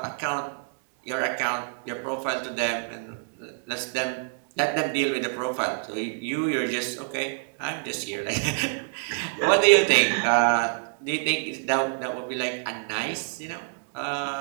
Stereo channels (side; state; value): left; silent; 61 dB below the other